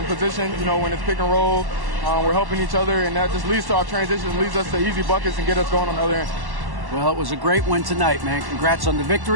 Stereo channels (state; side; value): late; left; 1.1 ms